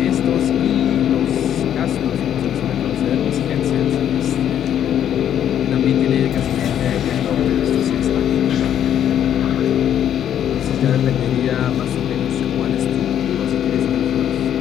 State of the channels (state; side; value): quieter; right; 10.0 dB